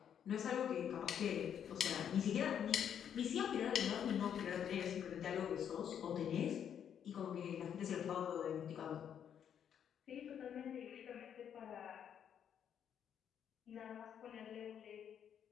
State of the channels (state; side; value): quieter; right; 8.8 dB